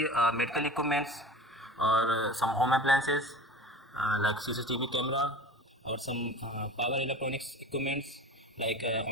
medical equipments or some home appliances like CCTV camera or some power electronics equipments like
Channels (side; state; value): both; normal; correlation 0.37